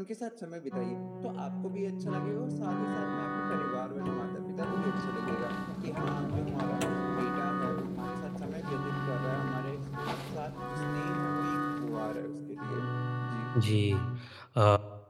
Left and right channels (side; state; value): both; identical; correlation 1.00